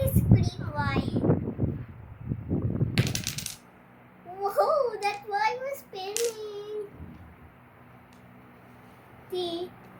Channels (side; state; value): both; identical; correlation 1.00